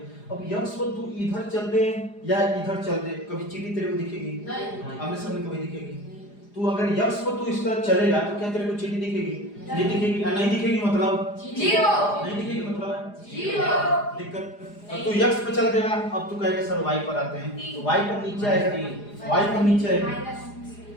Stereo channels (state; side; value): late; right; 4.9 ms